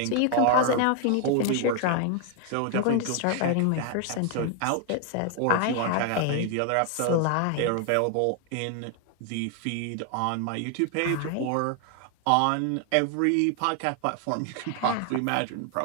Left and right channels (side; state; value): both; different; correlation 0.00